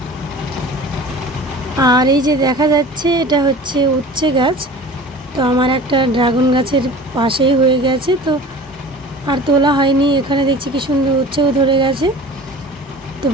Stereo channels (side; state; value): both; normal; correlation 0.40